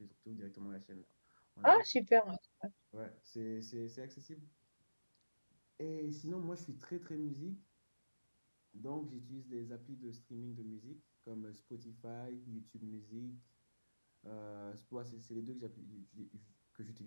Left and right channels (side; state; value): both; inverted; correlation -1.00